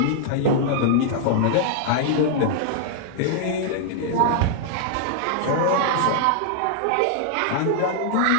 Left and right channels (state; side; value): different; both; correlation -0.01